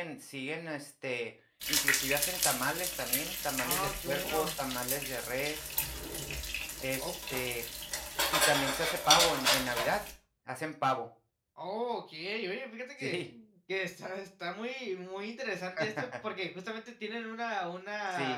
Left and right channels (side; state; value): both; identical; correlation 1.00